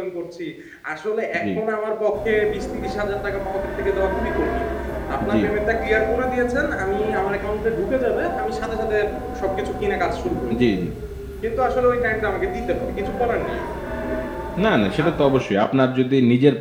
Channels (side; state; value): both; identical; correlation 1.00